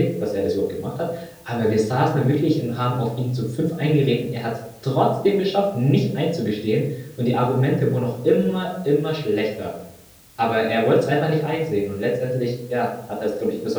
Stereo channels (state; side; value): identical; both; correlation 1.00